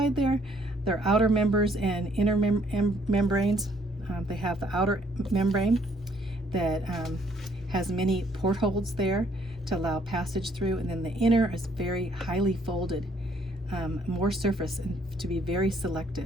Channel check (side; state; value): both; normal; correlation 0.65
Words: there. They're outer members and inner membranes. They have the outer membrane that has many portholes there to allow passage through, and then the inner is very highly folded, more surface, and to be very